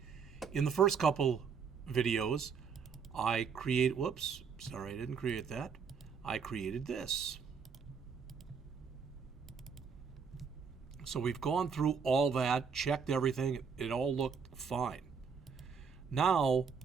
In the first couple videos, I created this. So we've gone through all that, checked everything, it all looked fine. Now,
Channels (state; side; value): quieter; left; 6.1 dB